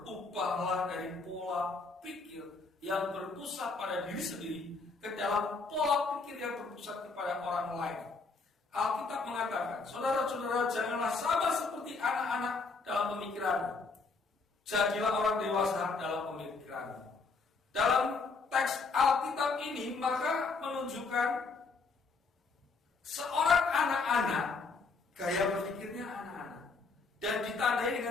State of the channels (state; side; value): quieter; right; 4.2 dB